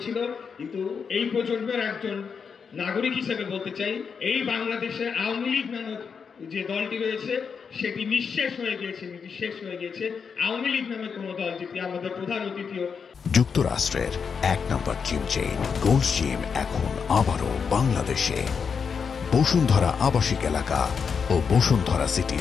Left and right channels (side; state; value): right; quieter; 6.1 dB